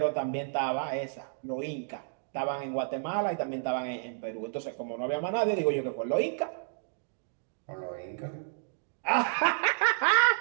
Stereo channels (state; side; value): silent; left; digital silence